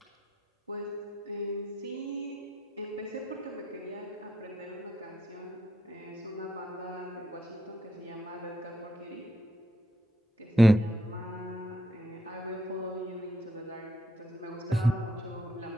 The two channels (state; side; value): normal; both; correlation 0.76